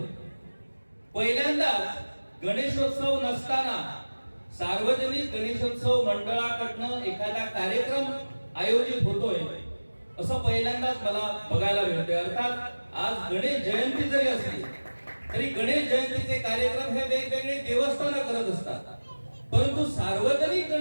पहिल्यांदाच गणेशोत्सव नसताना सार्वजनिक गणेशोत्सव मंडळाकडनं एखादा कार्यक्रम आयोजित होतोय असं पहिल्यांदाच मला बघायला मिळतंय. अर्थात आज गणेश जयंती जरी असली तरी गणेश जयंतीचे कार्यक्रम हे वेगवेगळे देवस्थानं करत असतात, परंतु सार्वजनिक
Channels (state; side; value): inverted; both; correlation -1.00